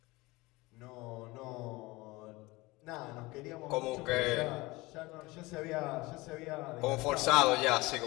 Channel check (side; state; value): right; quieter; 21.9 dB